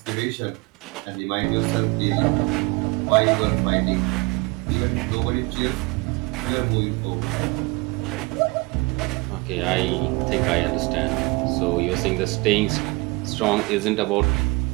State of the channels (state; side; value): quieter; left; 26.1 dB